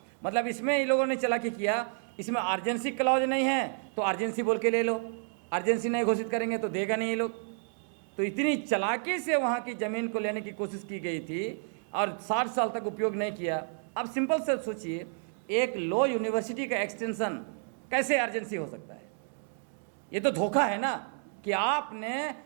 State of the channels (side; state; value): left; silent; 57 dB below the other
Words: मतलब इसमें इन लोगों ने चालाकी किया, इसमें अर्जेंसी क्लॉज नहीं है तो अर्जेंसी बोल के ले लो, अर्जेंसी नहीं घोषित करेंगे तो देगा नहीं ये लोग। तो इतनी चालाकी से वहाँ की ज़मीन को लेने की कोशिश की गई थी और 60 साल तक उपयोग नहीं किया। अब सिंपल से सोचिए, एक लॉ यूनिवर्सिटी का एक्सटेंशन कैसे अर्जेंसी हो सकता है? ये तो धोखा है ना, कि आपने